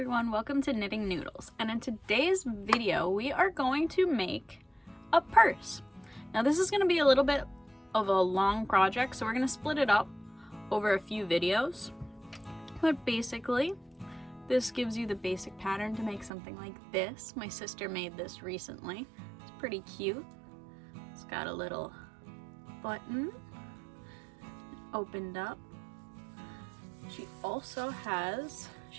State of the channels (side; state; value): left; drops out; at 16.3 s